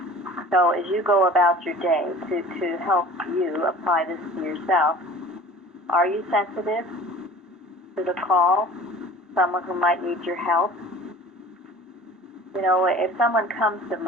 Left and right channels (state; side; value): normal; both; correlation 0.44